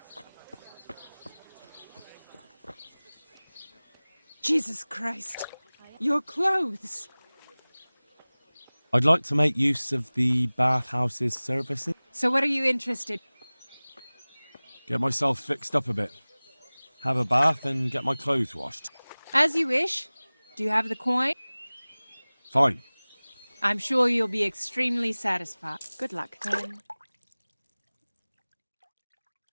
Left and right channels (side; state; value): both; inverted; correlation -1.00